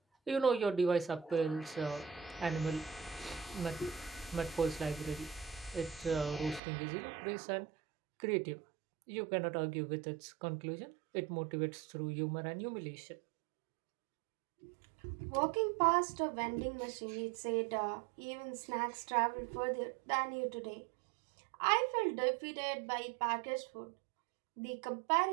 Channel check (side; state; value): left; drops out; at 6.6 s